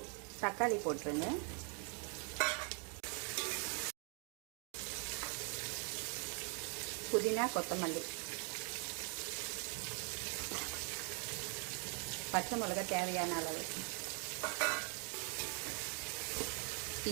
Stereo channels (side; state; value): left; quieter; 38.7 dB